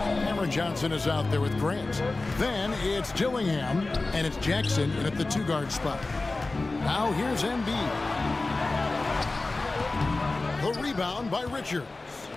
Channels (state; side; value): quieter; right; 3.3 dB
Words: Johnson is out there with Grant. Then it's Dillingham, and it's Jackson in at the 2-guard spot. Now here's Embiid. The rebound by Richards.